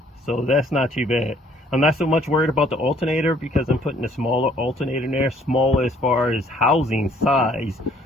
So that's not too bad. I'm not so much worried about the alternator because I'm putting a smaller alternator in there, small as far as housing size,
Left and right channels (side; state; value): both; normal; correlation 0.61